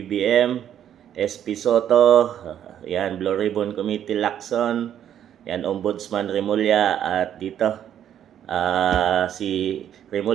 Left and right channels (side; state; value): left; quieter; 10.1 dB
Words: SP Soto, yan, Blue Ribbon Committee Lacson, yan, Ombudsman Remulla, at dito, si